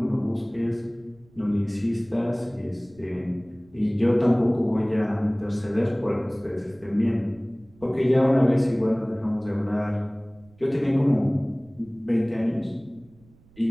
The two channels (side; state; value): right; noise; rumble, 28 dB below the sound